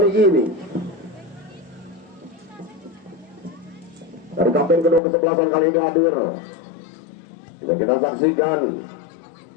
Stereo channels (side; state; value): right; drops out; at 5.0 s